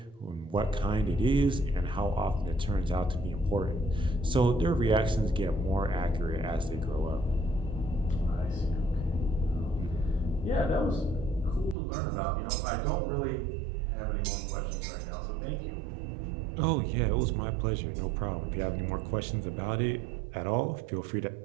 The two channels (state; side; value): drops out; left; at 11.8 s